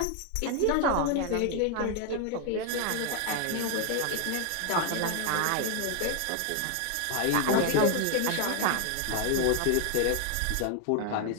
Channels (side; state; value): both; different; correlation 0.00